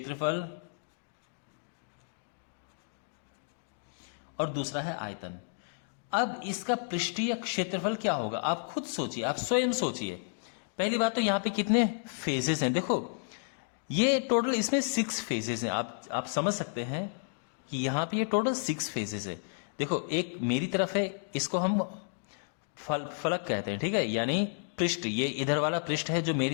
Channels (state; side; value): silent; right; digital silence